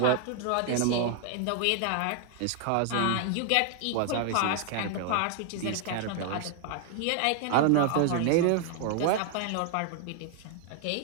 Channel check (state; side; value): different; both; correlation 0.00